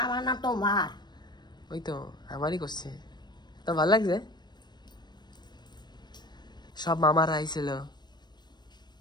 আমার না তোমার। ওই তো আমারই করছে, তো ভালো লাগছে। সব মামারা আইছিল।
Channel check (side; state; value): right; late; 0.21 ms